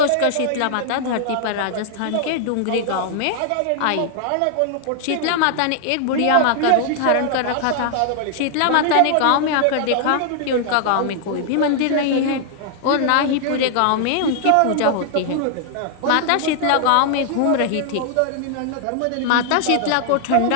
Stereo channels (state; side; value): different; both; correlation 0.00